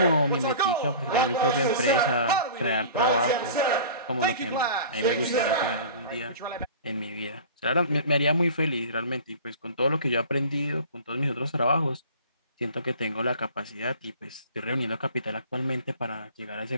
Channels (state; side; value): inverted; both; correlation -0.42